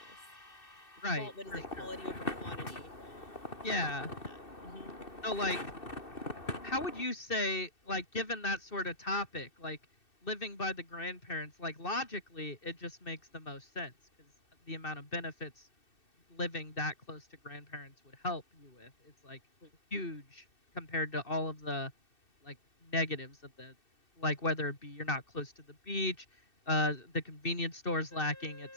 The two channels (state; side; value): late; right; 2.6 ms